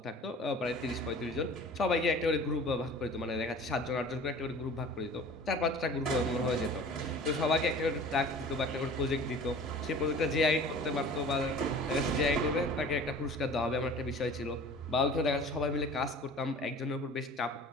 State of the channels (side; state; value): both; normal; correlation 0.43